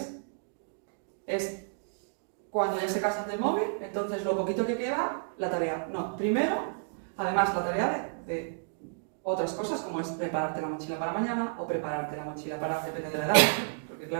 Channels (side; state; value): left; silent; digital silence